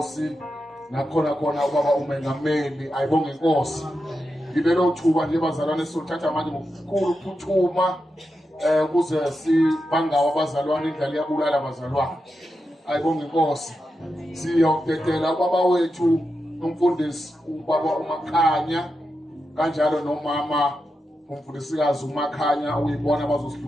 nakhona khona ubaba umengameli. Ayibonge Inkosi. Ngibelo thuba nje bazalwane sothatha manje ngokukhulu ukuphuthuma kuze sibangawa abazalwane indlela yabulala abazalwane. Ayibonge Inkosi. Siyokudedela ubaba wethu umfundisi ubaba uMakhanya kanjalo nomama umfundisikazi uMakhanya uyibona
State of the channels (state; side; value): normal; both; correlation 0.88